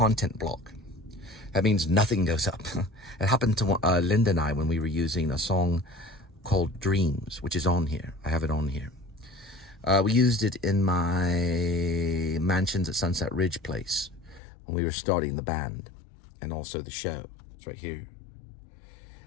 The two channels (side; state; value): right; drops out; at 14.4 s